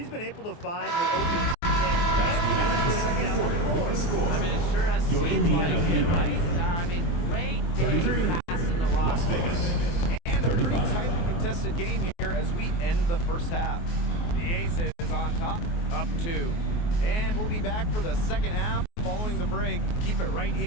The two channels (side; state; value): right; late; 24 ms